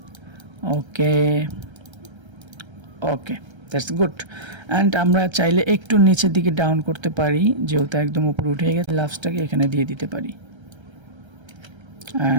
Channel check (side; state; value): left; late; 1.3 ms